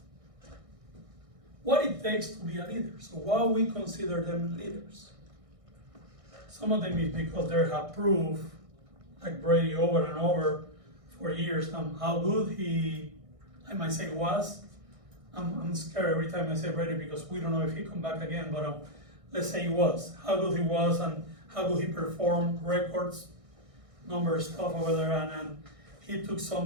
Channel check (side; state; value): left; late; 1.6 ms